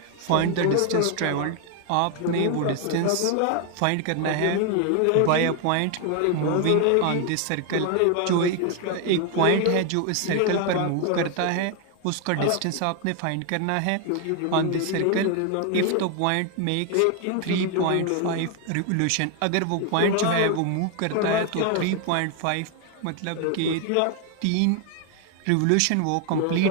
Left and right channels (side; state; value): both; different; correlation 0.01